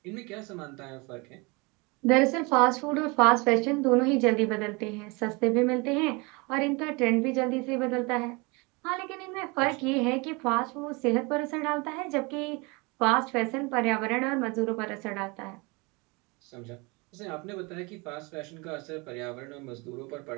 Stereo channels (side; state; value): left; quieter; 27.7 dB